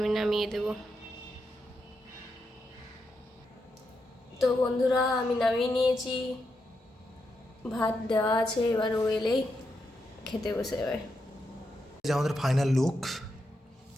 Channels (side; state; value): both; normal; correlation 0.84